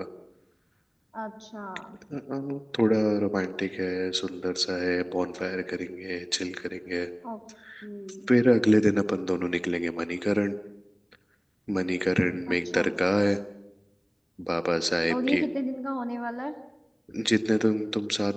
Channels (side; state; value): both; identical; correlation 1.00